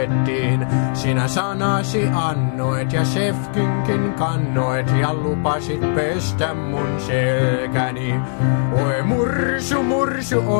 Sinä sanasi annoit ja chefkynkin kannoit ja lupasit pestä mun selkäni. Oi mursu, mursu,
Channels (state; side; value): silent; right; digital silence